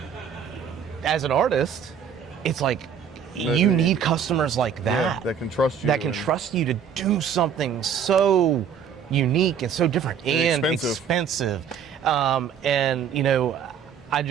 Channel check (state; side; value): quieter; left; 7.5 dB